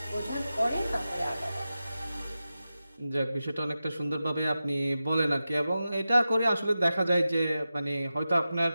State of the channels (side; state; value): both; inverted; correlation -0.93